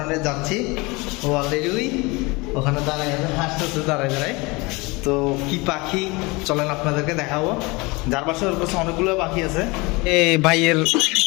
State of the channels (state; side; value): quieter; right; 25.1 dB